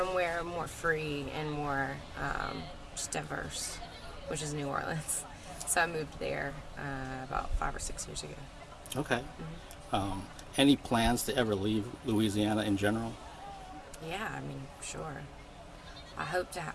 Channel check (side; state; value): both; identical; correlation 1.00